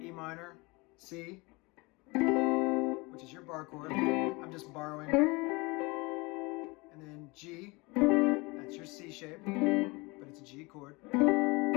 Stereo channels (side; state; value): right; quieter; 25.5 dB